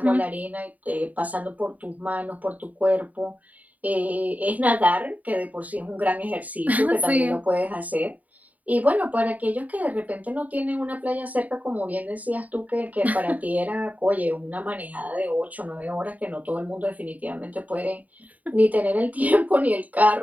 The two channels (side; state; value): left; late; 0.074 ms